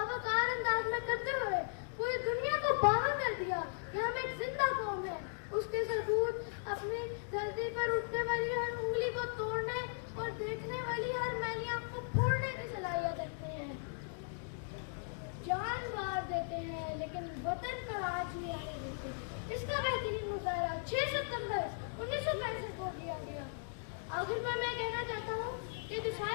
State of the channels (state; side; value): silent; right; digital silence